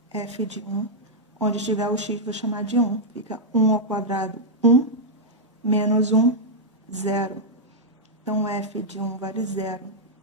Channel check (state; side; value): normal; both; correlation -0.06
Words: f de 1. Onde tiver o x, vou chamar de 1. Fica 1 ao quadrado, 1. Menos 1, 0. Então, f de 1 vale 0.